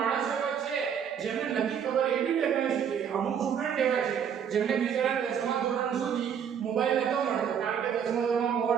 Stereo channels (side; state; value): left; quieter; 8.0 dB